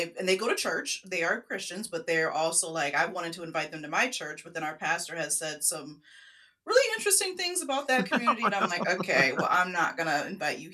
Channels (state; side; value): identical; both; correlation 1.00